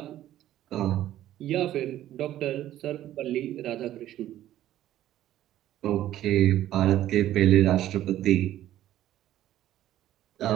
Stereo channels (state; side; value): quieter; left; 13.0 dB